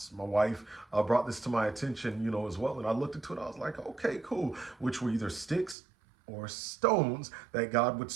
My wife brought this to my attention, as well. And I looked into it. I was like, okay, cool. Which were either sticks or stones that God would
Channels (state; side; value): drops out; left; at 5.8 s